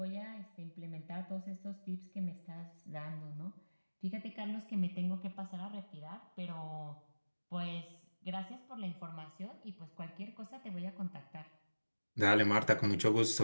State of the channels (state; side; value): inverted; both; correlation -1.00